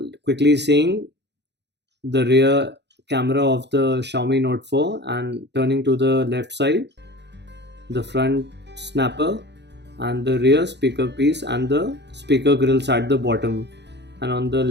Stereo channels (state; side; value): late; left; 0.50 ms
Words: quickly seeing the rear camera of the Xiaomi Note 4 and turning to the left side, the front snapper and the rear speaker piece and the speaker grills at the bottom, and on the